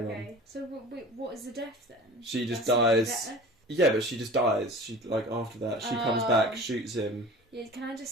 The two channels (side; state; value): both; normal; correlation 0.40